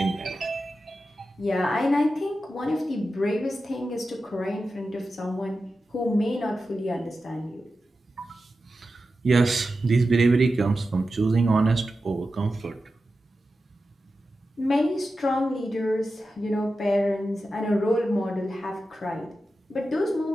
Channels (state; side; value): normal; both; correlation 0.92